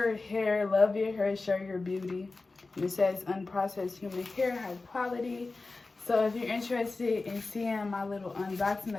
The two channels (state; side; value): quieter; right; 3.6 dB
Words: Hair. Love your hair, show your beauty. And it says unprocessed human hair, high quality. So if you're interested in seeing my little